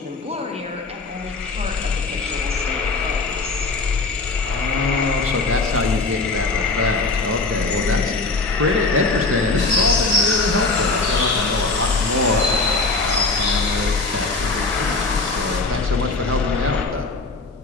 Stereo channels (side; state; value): right; quieter; 3.6 dB